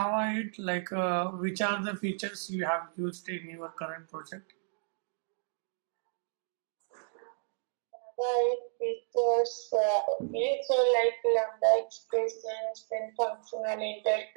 8, which are the features you have used in your current project? right, features, okay, so like lambda expressions, then functional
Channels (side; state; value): left; silent; digital silence